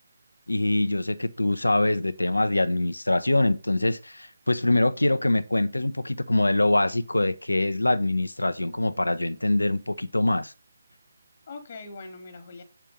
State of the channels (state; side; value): inverted; both; correlation -0.99